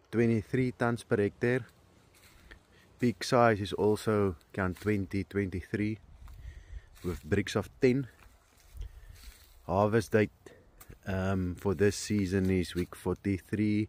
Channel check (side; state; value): both; identical; correlation 1.00